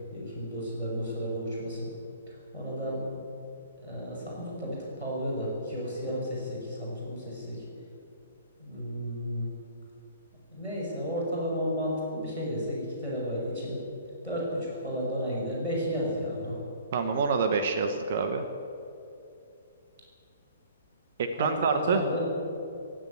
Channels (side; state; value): both; inverted; correlation -0.51